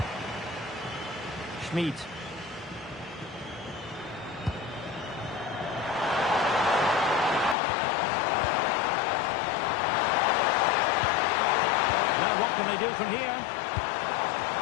Schmid. Now what can they do from here?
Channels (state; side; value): drops out; right; at 7.6 s